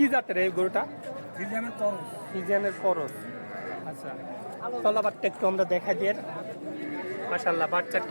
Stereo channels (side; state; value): both; inverted; correlation -1.00